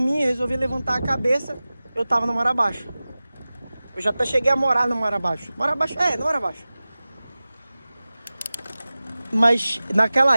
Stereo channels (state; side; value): inverted; both; correlation -0.97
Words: e resolvi levantar a cabeça, eu tava no mar abaixo. Eu já até cheguei a morar no mar abaixo. Mar abaixo? É, no mar abaixo. Mas